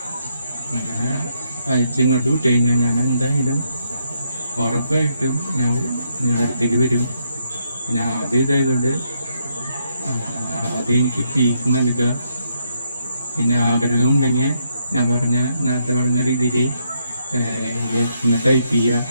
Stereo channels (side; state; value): both; inverted; correlation -0.76